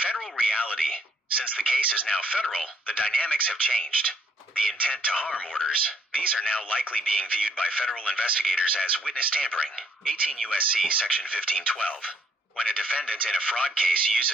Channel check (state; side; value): normal; both; correlation 0.67